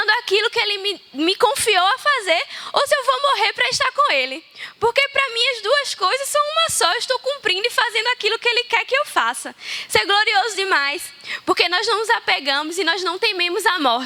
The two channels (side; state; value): both; identical; correlation 1.00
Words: aquilo que Ele me confiou a fazer, ou se eu vou morrer para estar com Ele. Porque para mim as duas coisas são uma só. Eu estou cumprindo e fazendo aquilo que Ele quer que eu faça. Isso é glorioso demais. Porque nós não nos apegamos e nós não tememos a